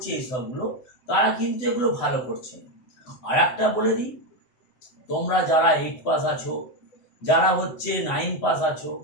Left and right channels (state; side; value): late; right; 7.9 ms